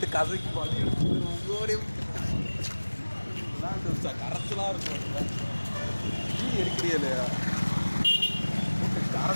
கதைக்கு பண்ணி கரைச்சலாக இருக்கும். நீ எடுக்கிறீ இல்லையா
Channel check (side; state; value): both; inverted; correlation -1.00